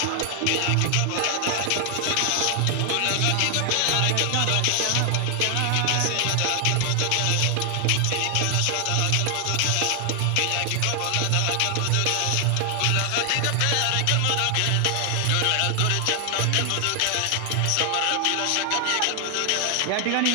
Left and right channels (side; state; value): both; different; correlation 0.00